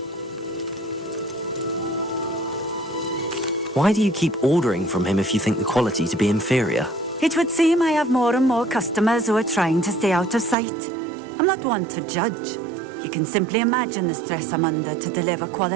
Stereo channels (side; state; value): left; drops out; at 10.6 s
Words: Why do you keep ordering from him if you think the quality to be inferior? It would seem I have more and more customers who are trying to stay out of sight. I'm not one to judge. You can simply imagine the stress I'm under to deliver